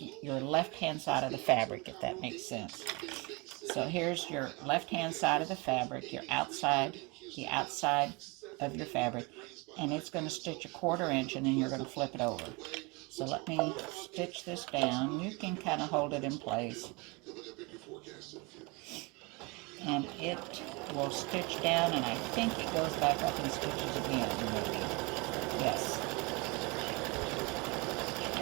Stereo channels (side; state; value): left; quieter; 27.8 dB